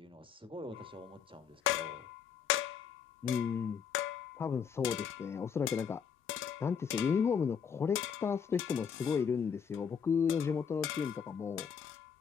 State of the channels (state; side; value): quieter; right; 7.0 dB